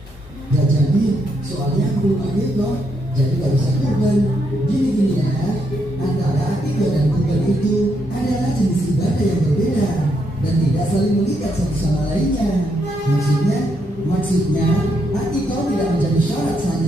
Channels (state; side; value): normal; both; correlation 0.77